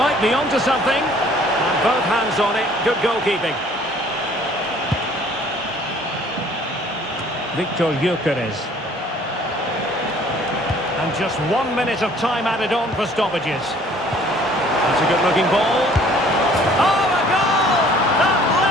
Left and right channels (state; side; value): normal; both; correlation 0.56